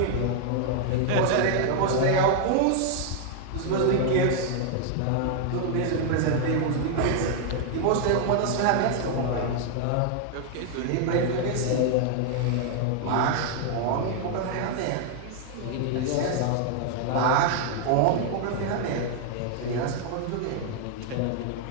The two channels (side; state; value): both; different; correlation 0.00